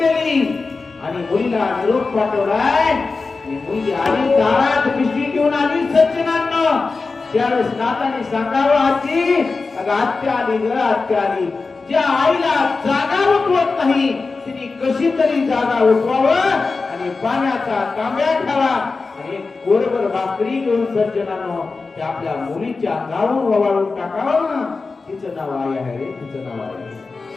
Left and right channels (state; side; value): quieter; right; 4.1 dB